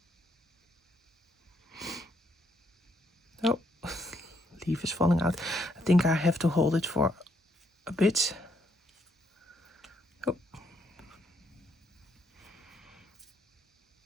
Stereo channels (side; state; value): both; normal; correlation 0.73